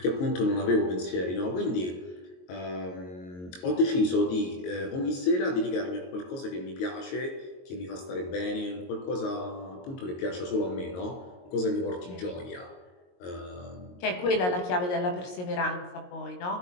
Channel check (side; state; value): right; late; 22 ms